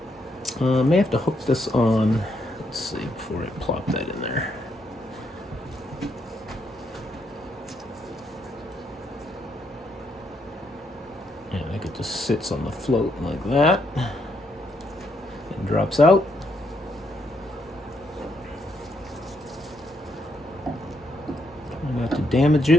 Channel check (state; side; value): normal; both; correlation 0.76